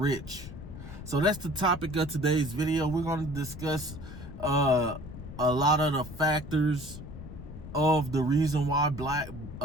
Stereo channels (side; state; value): left; noise; rumble, 12 dB below the sound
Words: So that's the topic of today's video. We're going to discuss a lot of the factors of the reason why